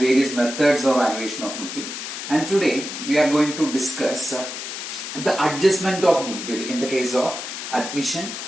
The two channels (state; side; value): noise; left; hiss, 7 dB below the sound